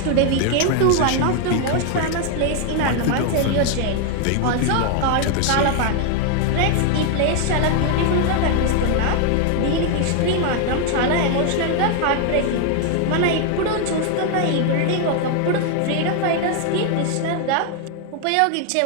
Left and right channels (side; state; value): both; different; correlation 0.00